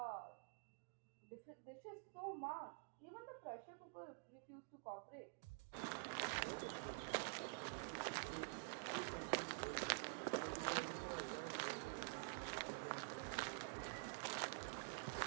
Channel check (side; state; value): left; quieter; 35.7 dB